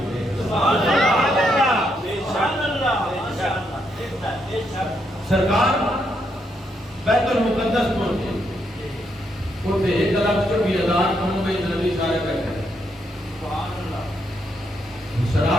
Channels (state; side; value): normal; both; correlation 0.78